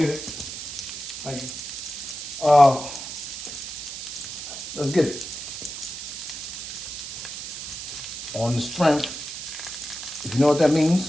it. Thank you. Let's get it. On the strength. If you know what that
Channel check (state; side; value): noise; right; hiss, 8 dB below the sound